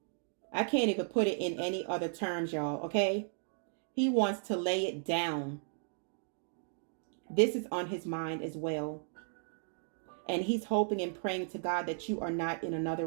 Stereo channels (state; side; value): silent; left; digital silence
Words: I can't even put it in any other terms, y'all, okay? He wants to lay it down. This is on his mind as well. And he's hoping and praying to God that you are not in another